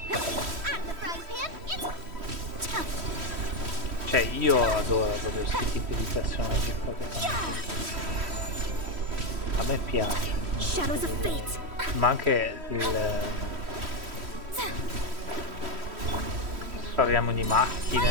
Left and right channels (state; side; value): late; left; 3.1 ms